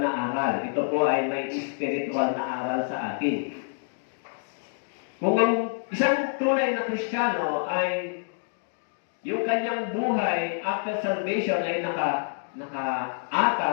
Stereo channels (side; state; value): right; silent; 60 dB below the other